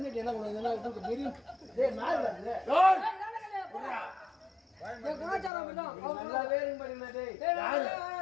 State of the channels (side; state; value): right; drops out; at 5.5 s